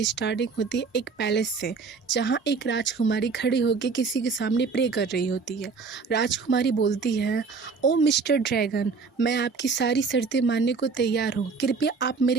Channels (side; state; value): left; quieter; 4.8 dB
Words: स्टार्टिंग होती है एक पैलेस से, जहां एक राजकुमारी खड़ी होकर किसी के सामने प्रे कर रही होती है। राजकुमारी बोलती है, ओ मिस्टर ड्रैगन, मैं आपकी सारी शर्तें मानने को तैयार हूँ, कृपया आप